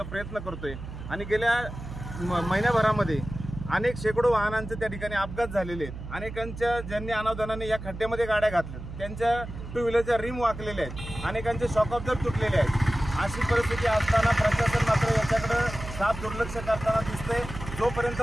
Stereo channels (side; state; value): right; noise; hum, 10 dB below the sound